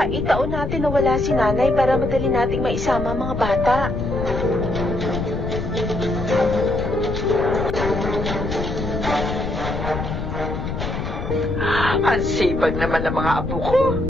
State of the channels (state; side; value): noise; left; rumble, 5 dB below the sound